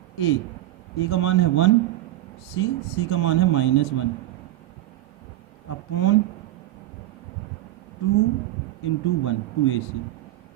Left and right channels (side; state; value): left; quieter; 14.9 dB